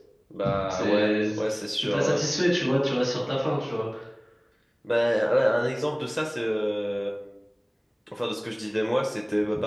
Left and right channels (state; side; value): identical; both; correlation 1.00